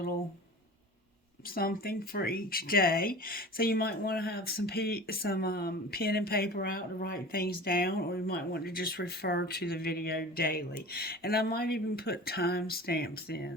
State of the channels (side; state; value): both; normal; correlation 0.37